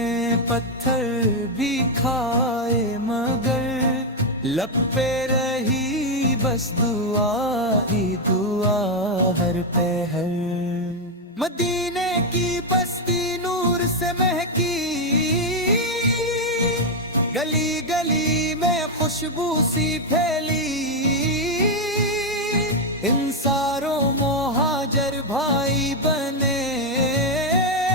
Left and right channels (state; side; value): normal; both; correlation 0.03